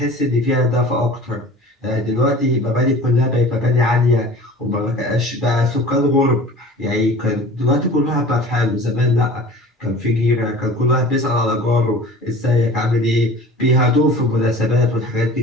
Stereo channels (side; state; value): both; normal; correlation 0.42